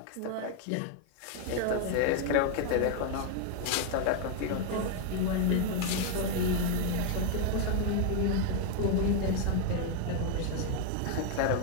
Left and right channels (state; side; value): different; both; correlation 0.00